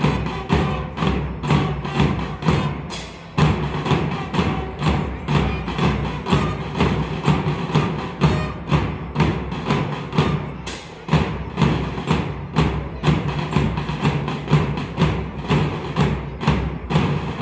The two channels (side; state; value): both; identical; correlation 1.00